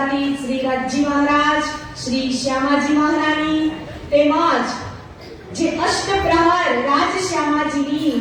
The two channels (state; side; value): identical; both; correlation 1.00